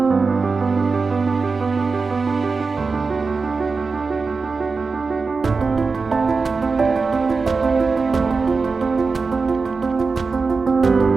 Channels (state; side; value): quieter; left; 4.4 dB